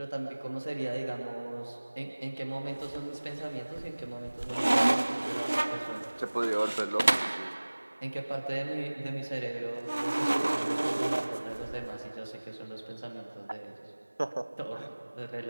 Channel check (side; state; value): both; inverted; correlation -1.00